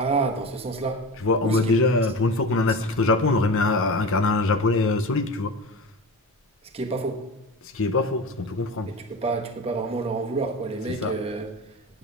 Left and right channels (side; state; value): both; normal; correlation 0.29